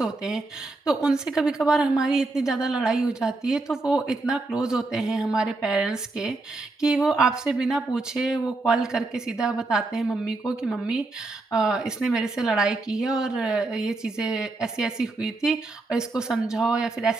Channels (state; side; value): quieter; left; 3.3 dB